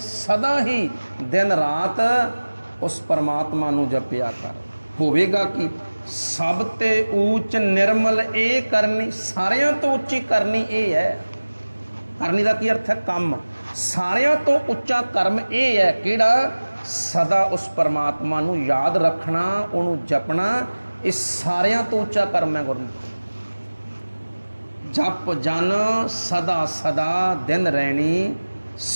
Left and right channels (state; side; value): inverted; both; correlation -1.00